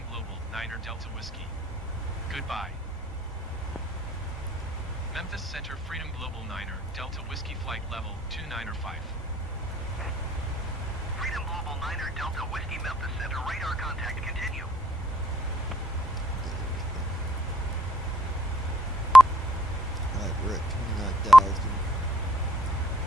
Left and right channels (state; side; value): normal; both; correlation 0.70